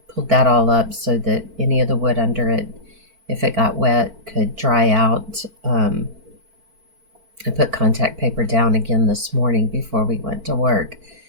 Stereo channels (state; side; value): late; left; 4.5 ms